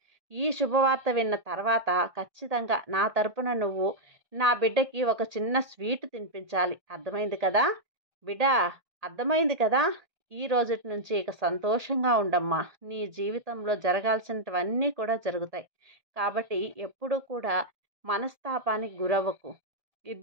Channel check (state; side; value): late; left; 1.8 ms